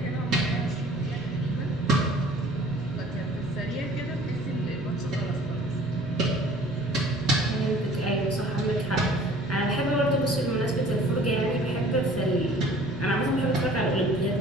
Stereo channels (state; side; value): noise; right; rumble, 19 dB below the sound